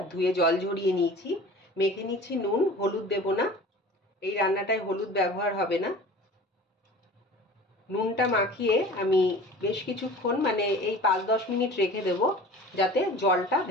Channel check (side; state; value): both; normal; correlation 0.41